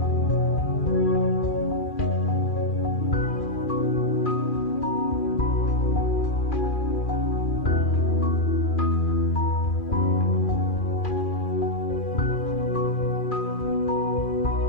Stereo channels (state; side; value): late; right; 2.4 ms